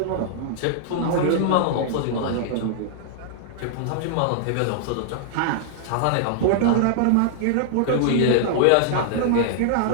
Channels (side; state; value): both; different; correlation -0.01